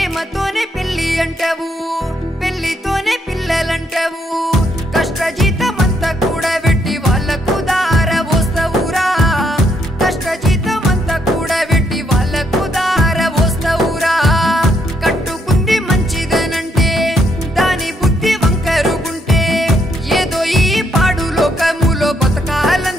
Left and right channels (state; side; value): normal; both; correlation 0.75